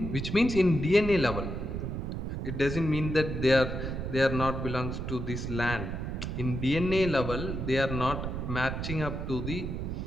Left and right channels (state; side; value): noise; right; rumble, 4 dB below the sound